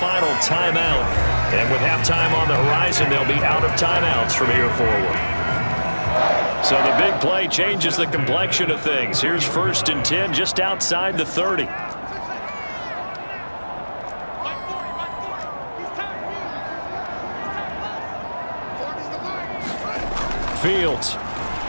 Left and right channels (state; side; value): inverted; both; correlation -1.00